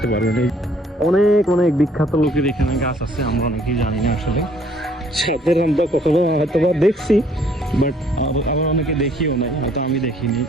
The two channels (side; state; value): both; normal; correlation 0.61